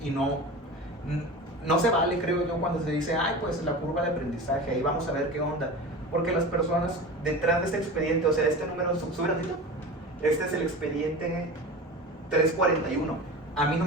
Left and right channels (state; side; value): normal; both; correlation 0.31